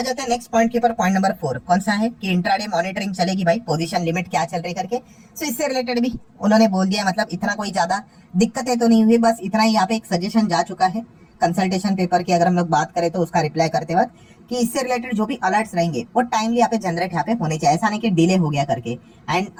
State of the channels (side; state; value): both; identical; correlation 1.00